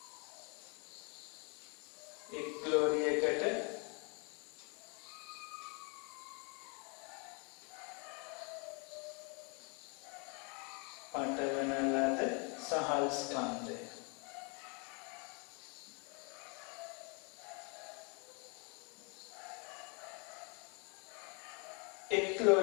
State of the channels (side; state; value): right; quieter; 34.5 dB